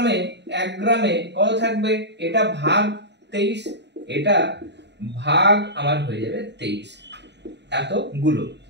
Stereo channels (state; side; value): late; left; 0.50 ms